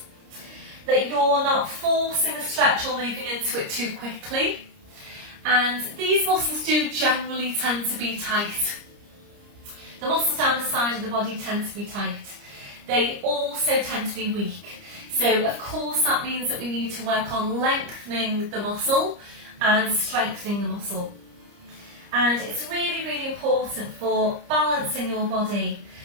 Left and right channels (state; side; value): late; left; 30 ms